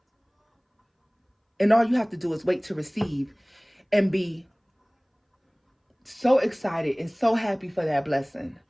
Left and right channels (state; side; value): identical; both; correlation 1.00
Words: And all you have to do is wait to receive and be so excited and so happy for that blessing.